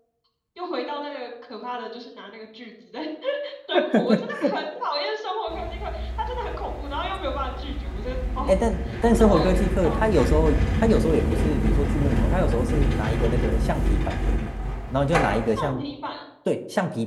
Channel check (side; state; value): both; identical; correlation 1.00